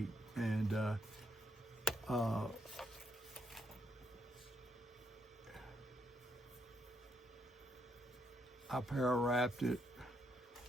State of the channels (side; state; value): both; normal; correlation 0.77